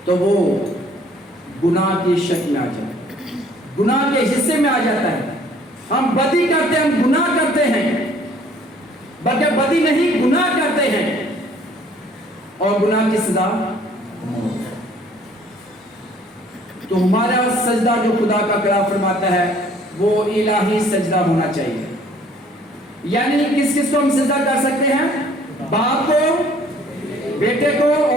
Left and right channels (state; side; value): normal; both; correlation 0.57